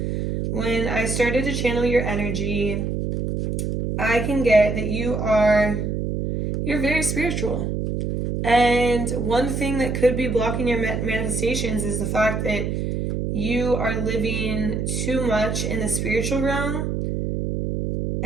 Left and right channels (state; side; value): noise; right; hum, 1 dB below the sound